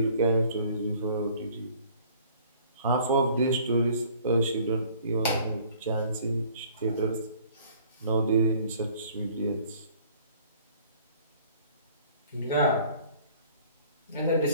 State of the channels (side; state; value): both; inverted; correlation -0.55